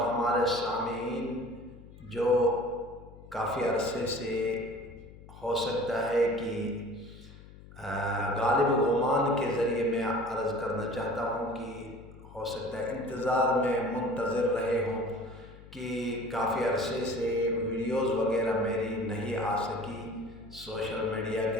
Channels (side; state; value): left; noise; hum, 19 dB below the sound